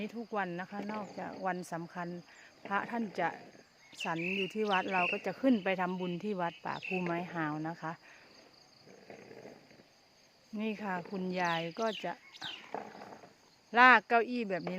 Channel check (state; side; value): identical; both; correlation 1.00